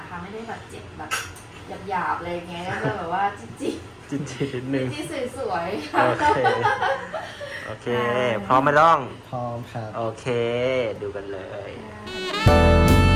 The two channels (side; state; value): both; identical; correlation 1.00